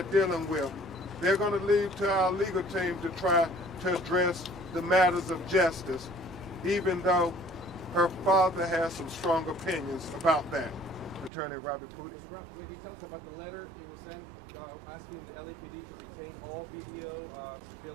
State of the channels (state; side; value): drops out; left; at 11.3 s